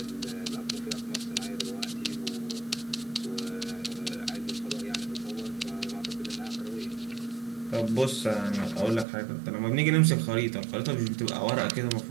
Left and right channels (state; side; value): drops out; left; at 9.1 s